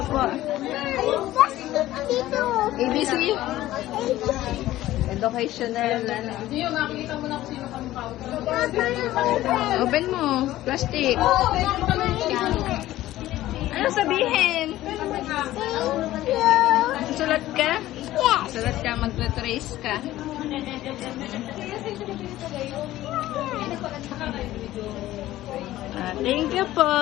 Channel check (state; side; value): quieter; right; 15.1 dB